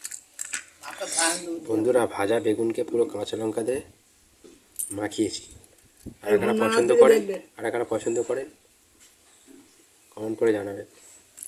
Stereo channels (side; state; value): both; identical; correlation 1.00